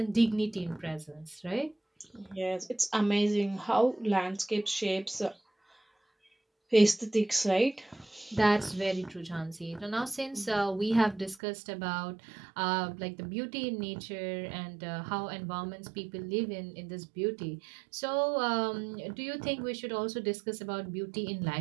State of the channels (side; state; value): left; drops out; at 11.4 s